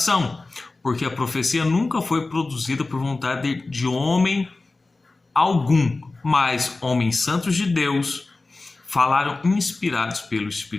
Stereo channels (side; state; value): right; quieter; 3.4 dB